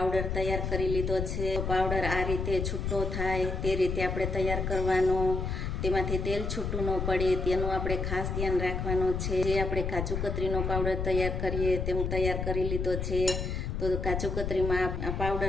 તૈયાર કરી લીધો છે। પાવડર આ રીતે છૂટો થાય તે રીતે આપણે તૈયાર કરવાનો, તેમાંથી તેલ છૂટું ન પડે તેનું આપણે ખાસ ધ્યાન રાખવાનું છે। જે આપણે કાજુ કતરીનો પાવડર તૈયાર કરીએ તેમ તૈયાર કરી લીધો છે। તો કાજુ કતરીમાં આ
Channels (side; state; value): left; noise; rumble, 2 dB below the sound